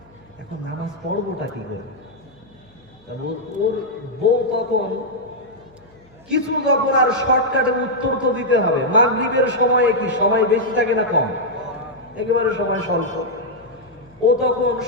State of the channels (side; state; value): left; noise; hum, 29 dB below the sound